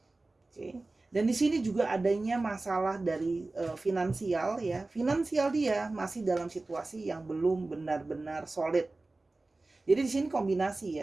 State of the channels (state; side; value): quieter; left; 3.2 dB